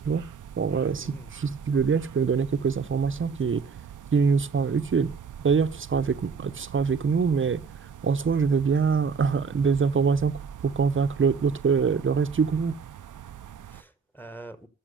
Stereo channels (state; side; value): quieter; left; 5.4 dB